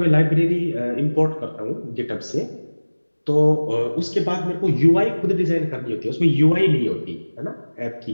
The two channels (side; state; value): both; inverted; correlation -1.00